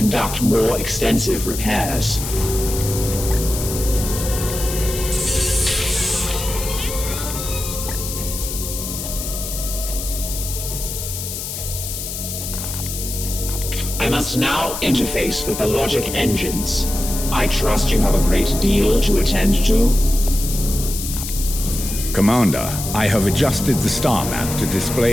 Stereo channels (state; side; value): noise; left; hiss, 6 dB below the sound